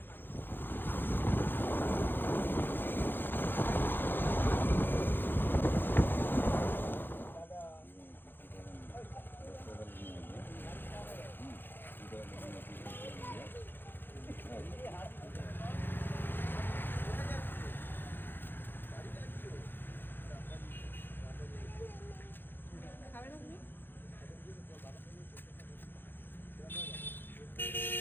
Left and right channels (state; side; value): late; right; 0.098 ms